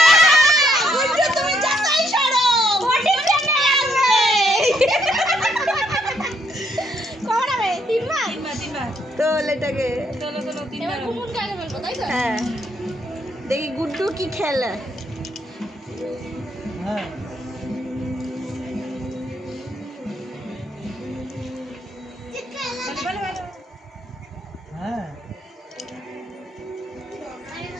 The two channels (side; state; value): both; normal; correlation 0.72